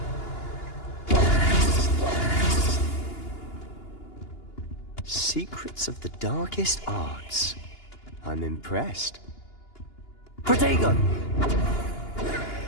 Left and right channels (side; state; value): right; late; 2.9 ms